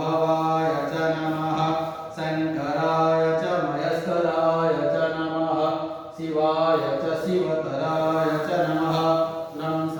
भवाय च नमः शङ्कराय च मयस्कराय च नमः शिवाय च शिवतराय च नमः तं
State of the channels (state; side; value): identical; both; correlation 1.00